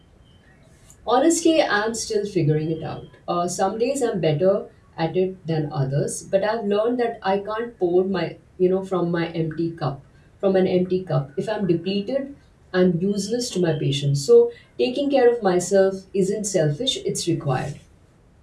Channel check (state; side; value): identical; both; correlation 1.00